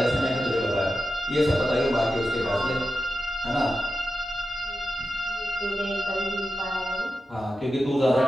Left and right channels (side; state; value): both; normal; correlation 0.91